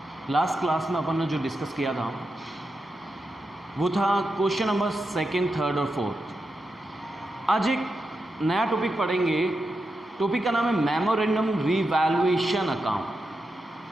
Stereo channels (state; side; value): normal; both; correlation 0.87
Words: Last class में अपन ने जो discuss किया था वो था क्वेश्चन नंबर सेकंड, थर्ड और फोर्थ। आज एक नया टॉपिक पढ़ेंगे। टॉपिक का नाम है मेमोरेंडम रिवैल्यूएशन अकाउंट।